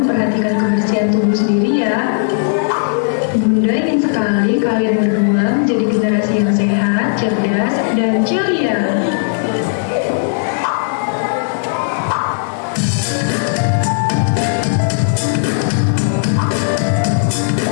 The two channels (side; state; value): right; silent; digital silence